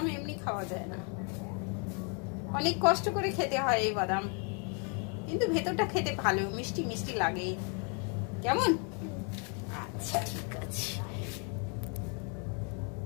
এমনি খাওয়া যায় না, অনেক কষ্ট করে খেতে হয় এই বাদাম, কিন্তু ভেতরটা খেতে ভালো, মিষ্টি মিষ্টি লাগে। কেমন? আচ্ছা ঠিক আছে,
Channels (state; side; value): quieter; right; 37.4 dB